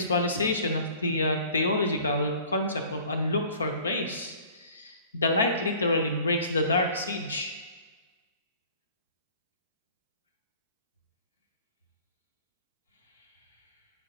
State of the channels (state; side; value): inverted; both; correlation -0.50